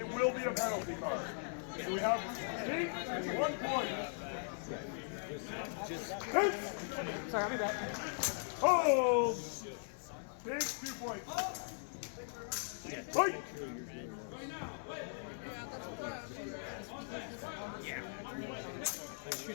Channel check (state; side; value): silent; right; digital silence